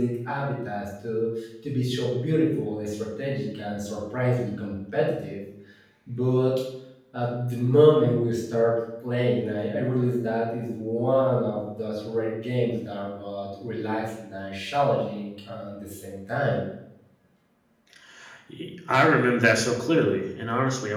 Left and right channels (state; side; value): identical; both; correlation 1.00